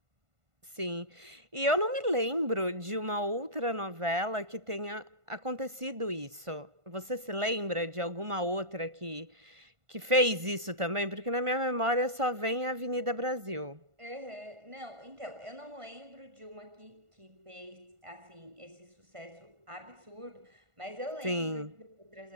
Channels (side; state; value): left; late; 1.5 ms